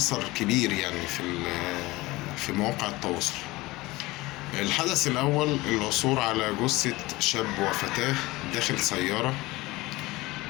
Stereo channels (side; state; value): right; quieter; 20.4 dB